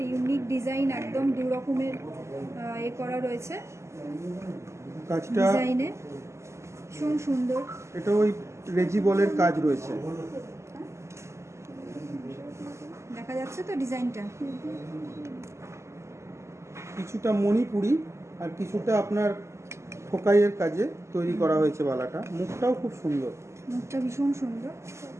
ইউনিক ডিজাইন, একদম দু রকমের করা রয়েছে কাজটা ডিজাইনে, ভীষণ সুন্দর। এটা ওই রেজি বলের কাজ রয়েছে। দেখা যাচ্ছে তো ডিজাইনটা? কিছুটা মণিপুরি আর কিছুটা আপনার ঠোকাইয়ের কাজে তৈরি করা হয়েছে বালাটা। মুখটাও খুব সুন্দর, মুখটা ভীষণ সুন্দর।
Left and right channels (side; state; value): left; late; 0.13 ms